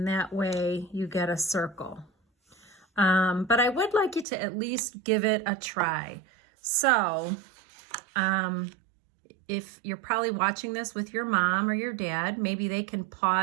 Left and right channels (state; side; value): drops out; left; at 4.2 s